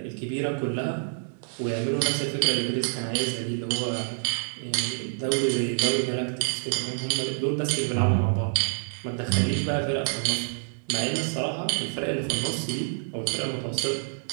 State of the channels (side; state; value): left; silent; digital silence